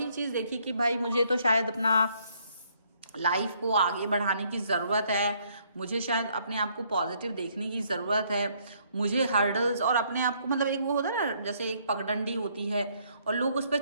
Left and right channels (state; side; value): inverted; both; correlation -0.68